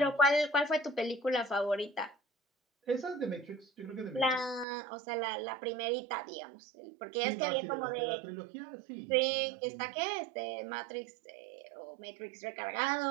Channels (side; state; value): left; drops out; at 4.7 s